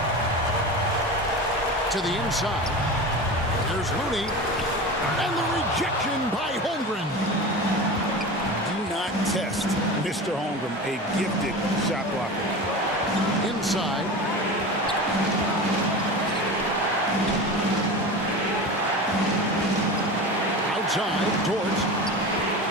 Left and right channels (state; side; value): normal; both; correlation 0.30